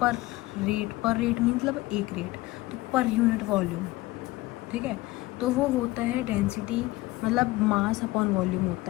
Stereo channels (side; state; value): right; quieter; 19.1 dB